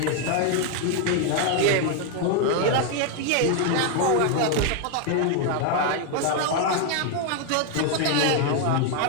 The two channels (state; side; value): different; both; correlation 0.01